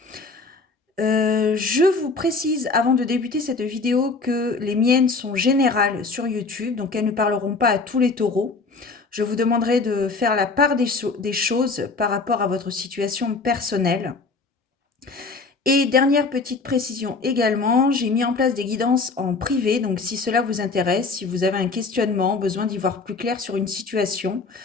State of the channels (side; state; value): right; quieter; 4.0 dB